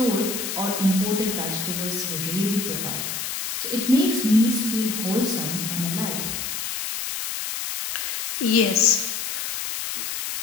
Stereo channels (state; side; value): noise; left; hiss, 3 dB below the sound